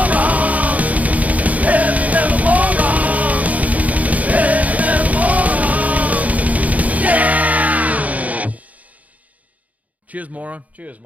Heavy metal morons! Heavy metal morons! Yeah! Cheers, moron. Cheers,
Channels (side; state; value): left; late; 0.072 ms